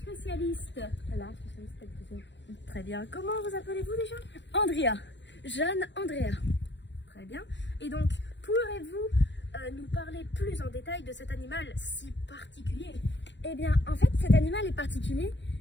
La spécialiste. Très bien. Comment vous appelez-vous déjà? Andrea. Jeanne Andrea. Très bien. Et donc, pourrez-vous nous parler plus en détail de cet animal si particulier? Eh bien, en fait, cet animal est particulier,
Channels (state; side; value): late; right; 0.53 ms